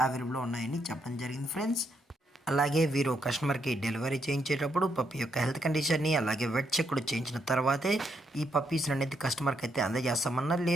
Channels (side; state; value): both; normal; correlation 0.77